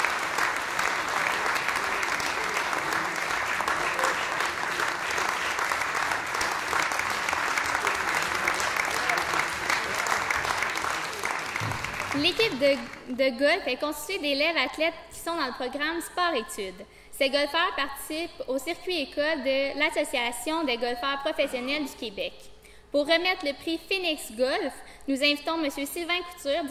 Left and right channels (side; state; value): both; identical; correlation 1.00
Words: L'équipe de golf est constituée d'élèves athlètes qui sont dans le programme sport-études. Ces golfeurs participent au circuit école de l'Association des golfeurs professionnels du Québec. Pour remettre le prix Phoenix Golf, nous invitons M. Sylvain Couture,